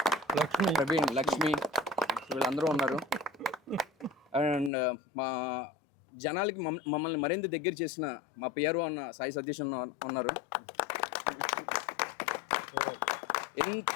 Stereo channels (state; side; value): drops out; right; at 4.7 s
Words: ప్రవీణ్, లక్ష్మి, వీళ్ళందరూ ఉన్నారు. అండ్ మా జనాలకి మమ్మల్ని మరింత దగ్గర చేసిన మా పిఆర్ఓ అన్న సాయి సతీష్ ఉన్నారు.